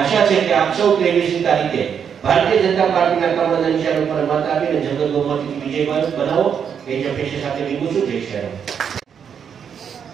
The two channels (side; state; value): left; quieter; 7.6 dB